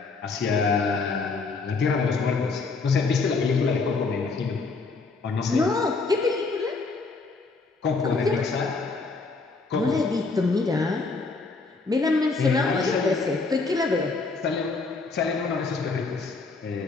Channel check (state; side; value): quieter; right; 4.1 dB